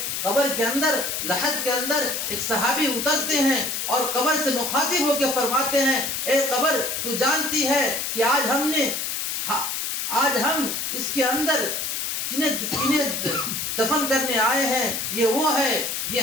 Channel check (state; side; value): noise; left; hiss, 2 dB below the sound